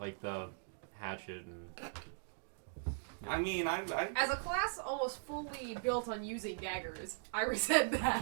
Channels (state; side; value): silent; left; digital silence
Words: the hatchet and. I mean, I As a class almost fully built on using daggers, I resent